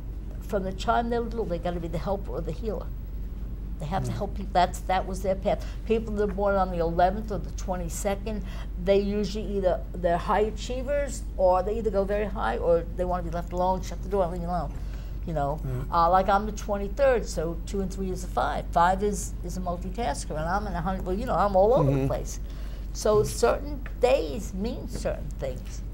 from the time they're little, they got to be the helper or the healer. They have to help people. That was their path. People that are born on the 11th or the 22nd, they usually they're high achievers, or they either go very high, or they want to be left alone, shut the door, and leave me alone. Like I'm the 23rd, so 2 and 3 is a 5. 5 is a multitasker, and I'm in 100. Well, I'm all over the place. So certain days mean certain things.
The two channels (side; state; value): both; identical; correlation 1.00